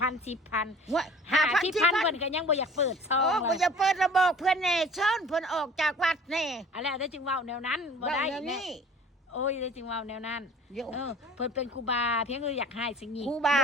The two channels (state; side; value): normal; both; correlation 0.47